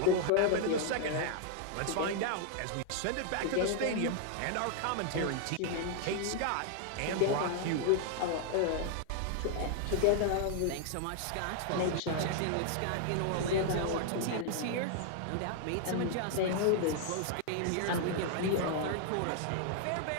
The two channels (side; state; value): both; different; correlation 0.00